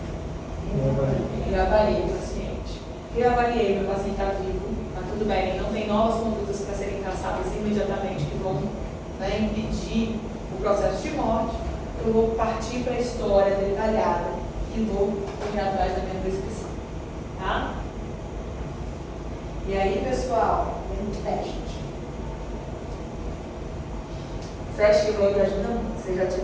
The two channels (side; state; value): both; identical; correlation 1.00